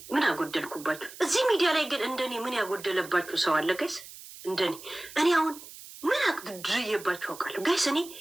ምን አጎደልኩባችሁ? እዚህ ሚዲያ ላይ ግን እንደኔ ምን ያጎደለባችሁ ሰው አለ ጋይስ? እንደኔ እኔ አሁን ምን አድርዬባችሁ አውቃለሁ ጋይስ? እኔ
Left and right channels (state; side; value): noise; right; hiss, 16 dB below the sound